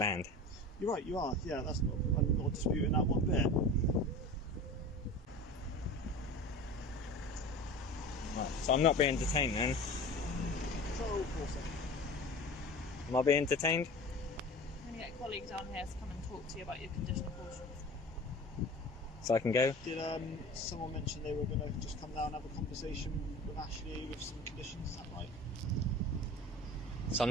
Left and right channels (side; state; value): both; normal; correlation 0.36